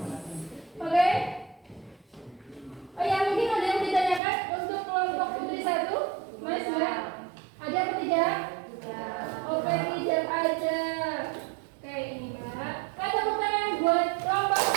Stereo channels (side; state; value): left; drops out; at 4.2 s